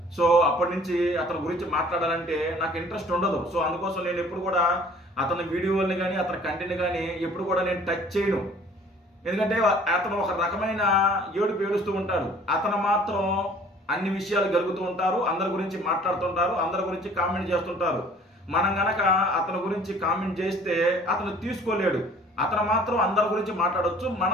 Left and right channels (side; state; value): both; normal; correlation 0.52